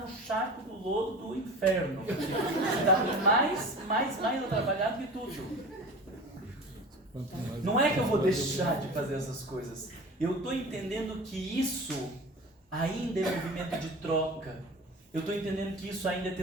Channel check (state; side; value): normal; both; correlation 0.35